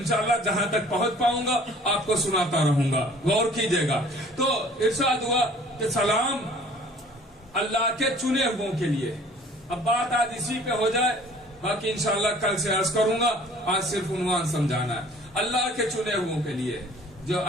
جہاں تک پہنچ پاؤں گا آپ کو سناتا رہوں گا، غور کیجئے گا. تو ارشاد ہوا کہ سلام اللہ کے چنے ہوئوں کے لیے. اب بات آج اسی پہ ہو جائے، باقی انشاءاللہ کل سے عرض کروں گا، آج صرف عنوان سمجھانا ہے. اللہ کے چنے ہوئوں کے لیے، جو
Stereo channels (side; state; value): both; normal; correlation 0.51